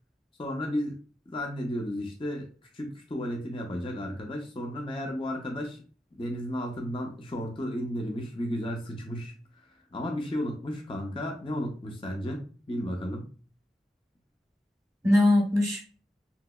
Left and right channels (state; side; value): normal; both; correlation 0.87